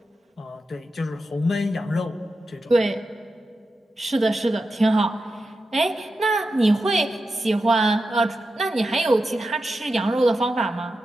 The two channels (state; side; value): normal; both; correlation 0.90